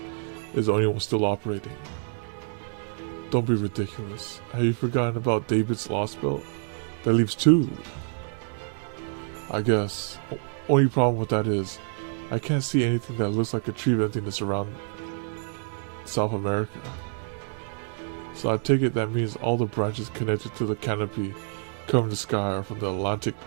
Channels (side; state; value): left; silent; 60 dB below the other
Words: is the only one still operating? Don't be ridiculous. Have you forgotten about David's Lost Belt? That leaves two. I guess. Only problem with that is, I can't see anything that looks like a tree of emptiness around South America. So I take it that means all the branches connected to the canopy covering the sky are from the Atlantic